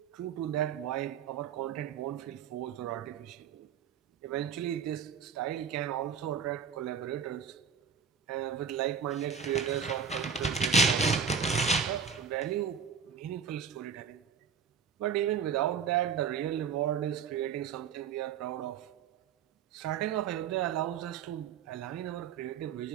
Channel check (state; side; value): quieter; left; 6.7 dB